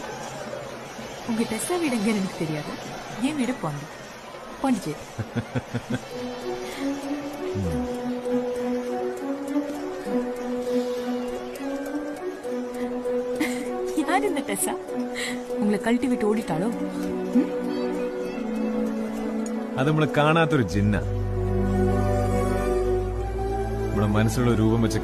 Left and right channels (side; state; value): both; identical; correlation 1.00